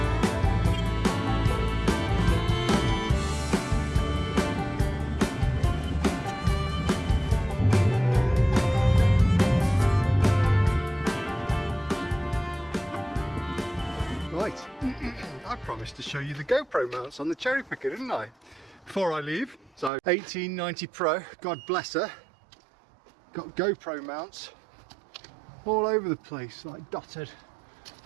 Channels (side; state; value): left; drops out; at 19.9 s